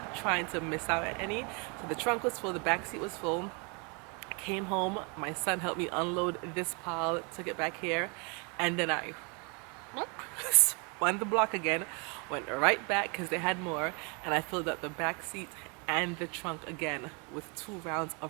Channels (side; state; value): left; quieter; 33.2 dB